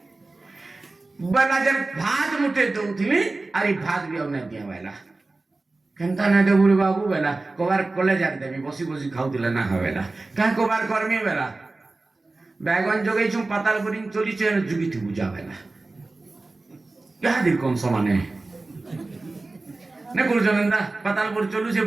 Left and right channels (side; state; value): left; quieter; 3.3 dB